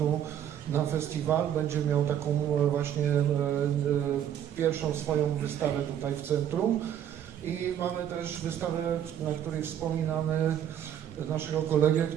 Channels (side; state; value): left; quieter; 10.1 dB